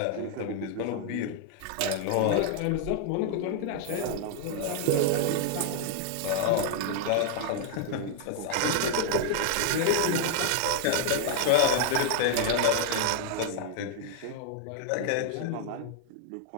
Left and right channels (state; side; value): different; both; correlation 0.00